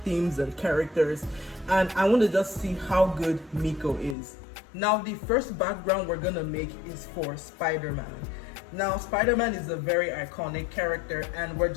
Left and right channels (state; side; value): drops out; right; at 4.2 s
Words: and characters, and I want to just see how good Mico is. Now the first background we're gonna make is for Spider-Man. Now, Spider-Man is a very iconic character and we're